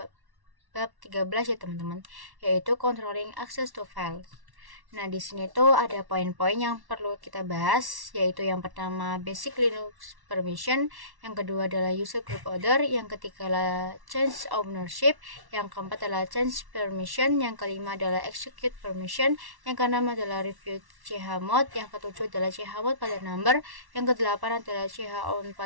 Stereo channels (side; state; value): left; late; 1.1 ms